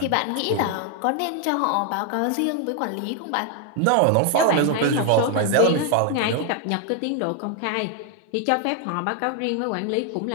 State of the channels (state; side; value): different; both; correlation 0.01